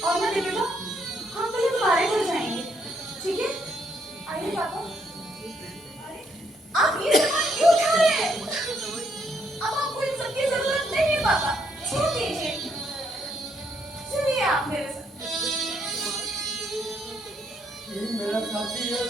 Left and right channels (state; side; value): normal; both; correlation 0.73